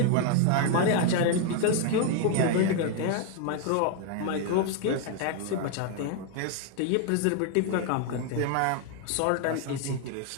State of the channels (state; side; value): different; both; correlation 0.00